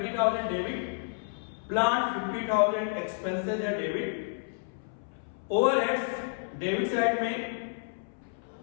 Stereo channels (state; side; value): silent; right; 58 dB below the other